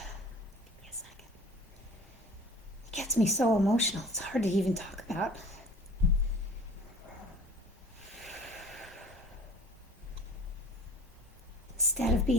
me a second. It gets me so emotional, it's hard to even talk about. Instead of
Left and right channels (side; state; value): both; normal; correlation 0.44